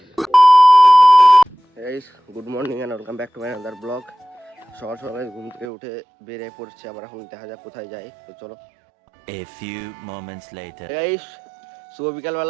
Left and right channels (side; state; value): left; drops out; at 5.7 s